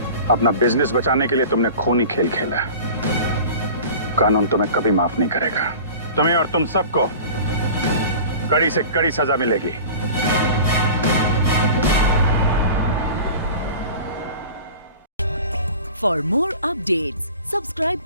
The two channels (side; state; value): both; inverted; correlation -0.39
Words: अपना बिजनेस बचाने के लिए तुमने खूनी खेल खेला। कानून तुम्हें कभी माफ नहीं करेगा। तुम्हें और तुम सबको कड़ी से कड़ी सजा मिलेगी। For more updates, subscribe